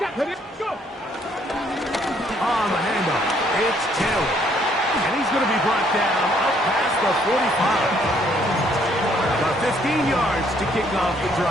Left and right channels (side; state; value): both; normal; correlation 0.66